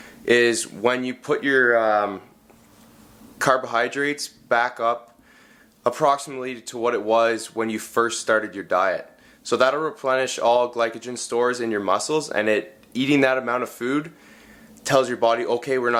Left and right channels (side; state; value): both; identical; correlation 1.00